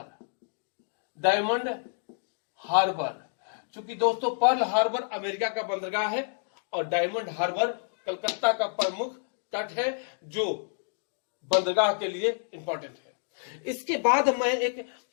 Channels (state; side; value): silent; right; digital silence